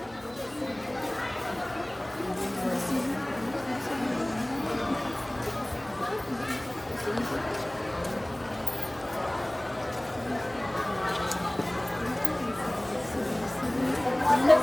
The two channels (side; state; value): right; noise; hum, 24 dB below the sound